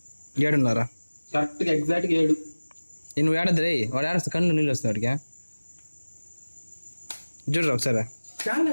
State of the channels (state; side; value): inverted; both; correlation -1.00